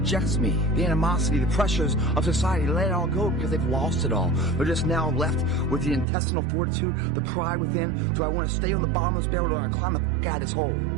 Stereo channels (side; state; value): left; drops out; at 6.1 s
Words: me? The animosity, the pressures of society, let it all go because they've lost it all. They're just now left with the intestinal fortitude, the pride within. Do I want to stay on the bottom of this barrel or do I want to climb the f*** out of this hole?